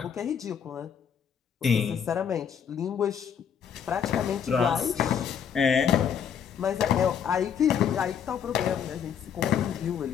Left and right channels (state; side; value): quieter; right; 7.9 dB